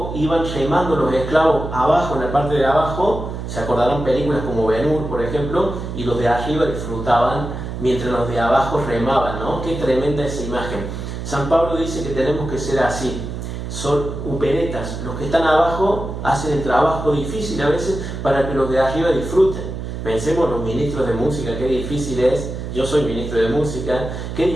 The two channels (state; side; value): noise; right; hum, 6 dB below the sound